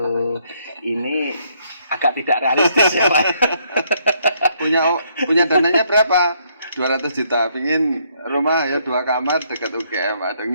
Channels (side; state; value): both; inverted; correlation -0.70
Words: Ini agak tidak realistis ya Pak. punya dananya berapa? 200 juta, pingin rumah 2 kamar dekat UGM, ada